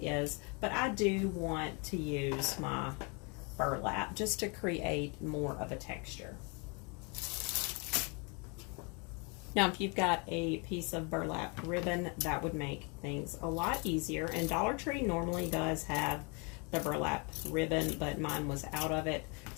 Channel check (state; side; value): quieter; right; 32.9 dB